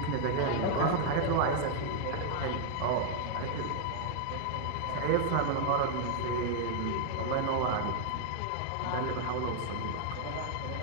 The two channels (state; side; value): different; both; correlation 0.00